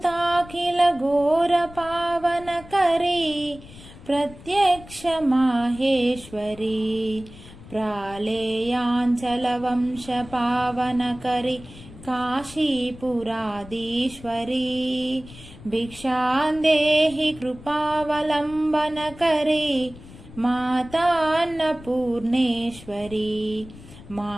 ఘోర పావనకరీ ప్రత్యక్ష మాహేశ్వరీ ప్రాళేయాంచల వంశ పావనకరీ కాశీపురాధీశ్వరీ భిక్షాందేహి కృపావలంబనకరీ మాతా అన్నపూర్ణేశ్వరీ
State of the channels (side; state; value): left; noise; rumble, 18 dB below the sound